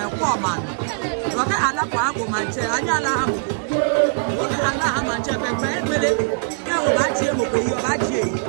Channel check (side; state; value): left; silent; digital silence